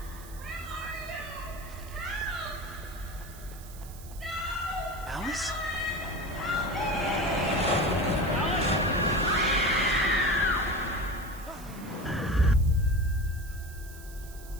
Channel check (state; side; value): noise; right; hiss, 18 dB below the sound